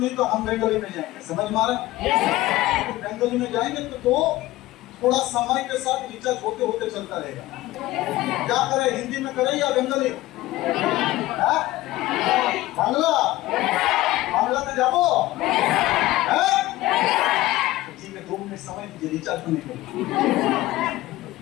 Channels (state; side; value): quieter; right; 17.2 dB